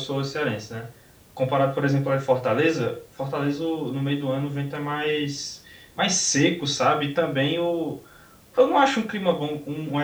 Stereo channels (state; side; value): identical; both; correlation 1.00